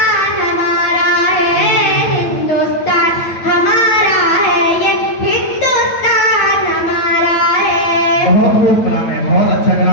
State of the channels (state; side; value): late; right; 9.0 ms